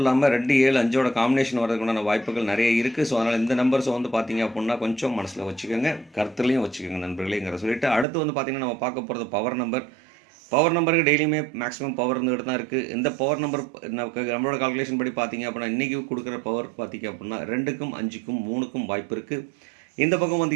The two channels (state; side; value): drops out; left; at 8.1 s